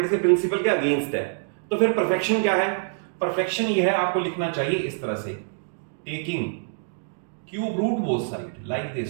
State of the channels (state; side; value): silent; left; digital silence